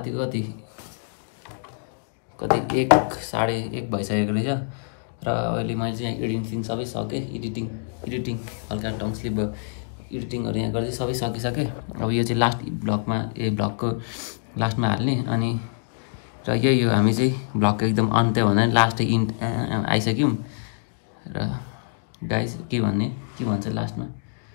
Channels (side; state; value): right; silent; digital silence